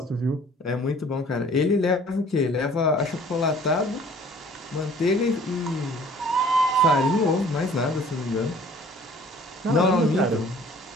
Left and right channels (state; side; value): normal; both; correlation 0.52